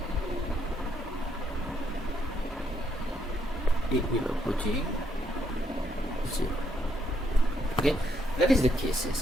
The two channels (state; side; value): normal; both; correlation 0.74